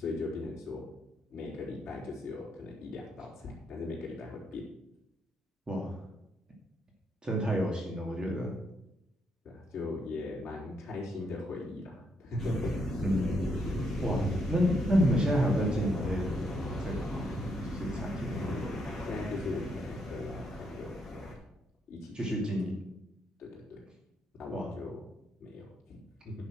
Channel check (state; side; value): normal; both; correlation 0.76